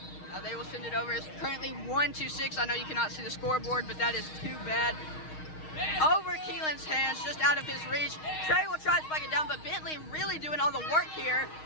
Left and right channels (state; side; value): late; right; 6.4 ms